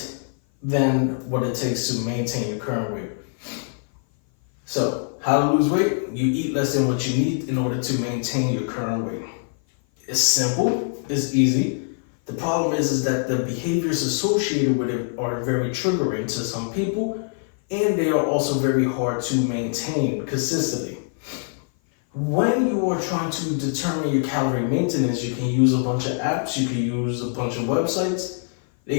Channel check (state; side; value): silent; right; 57 dB below the other